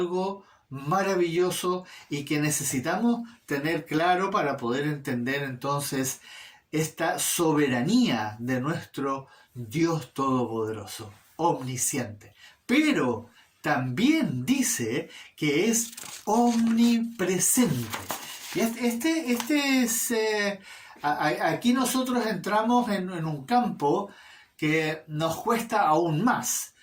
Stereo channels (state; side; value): identical; both; correlation 1.00